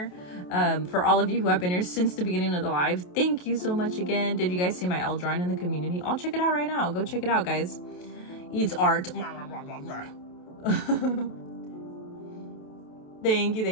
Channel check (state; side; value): late; right; 28 ms